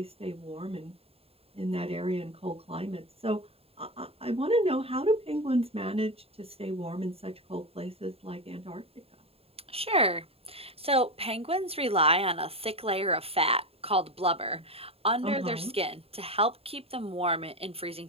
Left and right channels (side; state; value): left; late; 0.28 ms